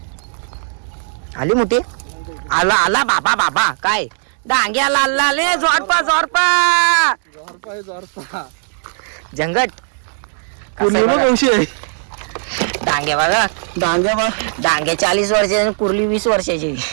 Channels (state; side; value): silent; left; digital silence